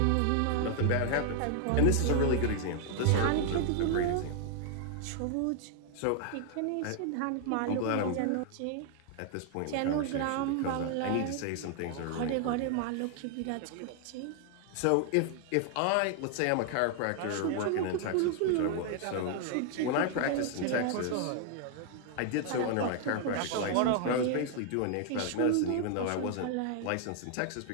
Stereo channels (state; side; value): different; both; correlation 0.00